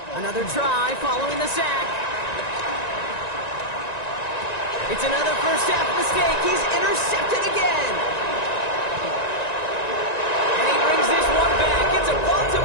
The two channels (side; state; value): right; late; 1.9 ms